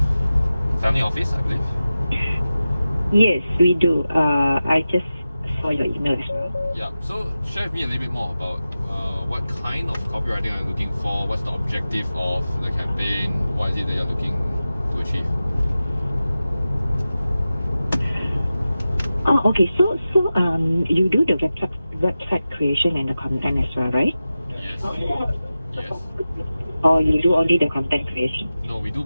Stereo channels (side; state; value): both; inverted; correlation -0.94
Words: family office, I believe. Yes, we do. I just saw your email as well. Yeah, so share with me a little bit more about what kind of copywriting are you looking for, what's the objective of the campaign, what is it that you're looking to achieve? Oh, okay. So, you do the website creation and the content as well, right? Yes. Yes. Or you do only the content creation? No, we do